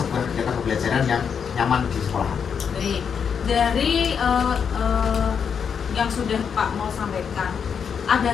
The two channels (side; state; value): right; quieter; 6.9 dB